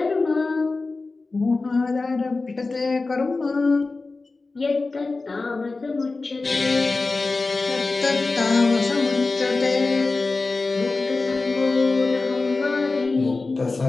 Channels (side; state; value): right; quieter; 3.6 dB